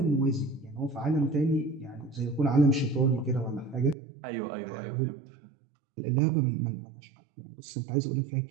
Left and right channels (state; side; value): drops out; left; at 4.0 s